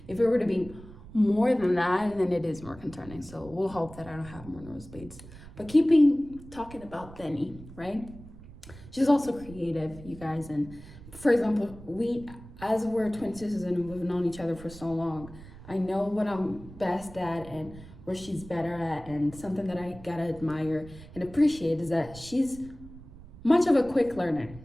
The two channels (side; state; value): right; noise; rumble, 17 dB below the sound